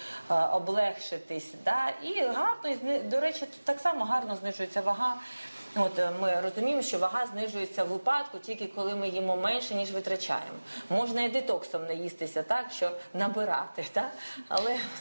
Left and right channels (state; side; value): inverted; both; correlation -1.00